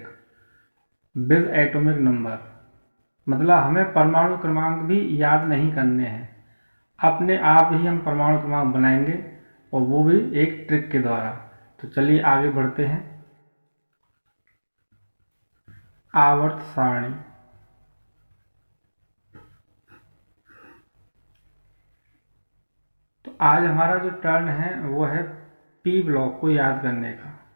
विद एटॉमिक नंबर। मतलब हमें परमाणु क्रमांक भी याद नहीं करने हैं, अपने आप ही हम परमाणु क्रमांक बनाएंगे और वो भी एक ट्रिक के द्वारा। तो चलिए आगे बढ़ते हैं। आवर्त सारणी। तो आज हमारा जो टर्न है वो है पी ब्लॉक को याद करने का।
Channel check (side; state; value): both; inverted; correlation -1.00